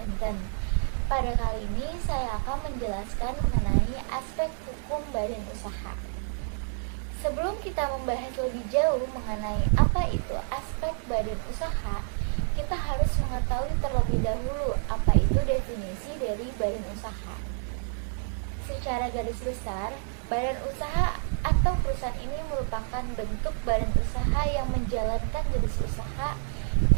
Pada kali ini saya akan menjelaskan mengenai aspek hukum badan usaha. Sebelum kita membahas lebih jauh mengenai apa itu aspek badan usaha, kita harus mengetahui terlebih dahulu apa itu definisi dari badan usaha. Secara garis besar, badan usaha atau perusahaan ini merupakan bentuk badan usaha yang menjalankan jenis usaha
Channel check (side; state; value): left; silent; 59 dB below the other